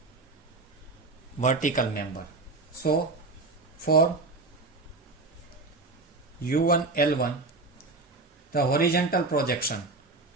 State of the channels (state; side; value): quieter; left; 3.5 dB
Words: vertical member. So for U1 L1, the horizontal projection,